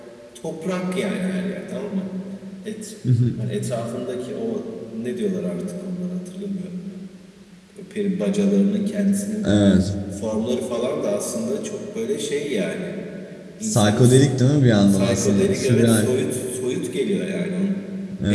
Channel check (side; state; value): both; identical; correlation 1.00